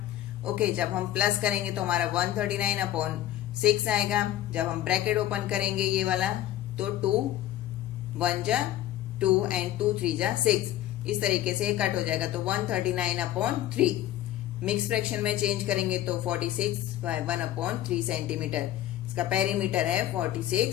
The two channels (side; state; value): right; quieter; 13.2 dB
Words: ओके, जब हम प्लस करेंगे तो हमारा 139/6 आएगा। जब हम ब्रैकेट ओपन करेंगे ये वाला तो 2 1 जा 2 एंड 2 3 जा 6, इस तरीके से कट हो जाएगा। तो 139/3। मिक्स फ्रैक्शन में चेंज करेंगे तो 46/1/3 सेंटीमीटर। इसका पेरीमीटर है